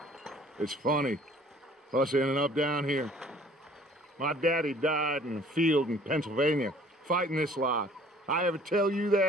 It's funny, us ending up down here. My daddy died in a field in Pennsylvania, fighting this lot. I ever tell you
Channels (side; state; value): both; normal; correlation 0.54